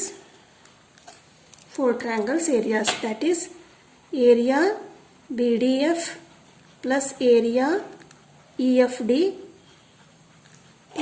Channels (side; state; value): both; identical; correlation 1.00